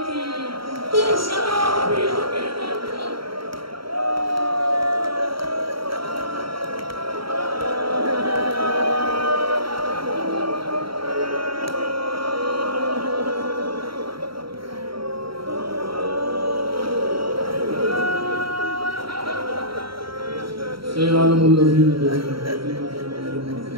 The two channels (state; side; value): late; left; 0.74 ms